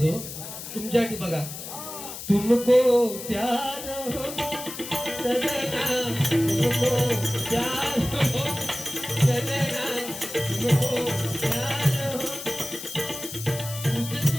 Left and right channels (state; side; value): noise; left; hiss, 10 dB below the sound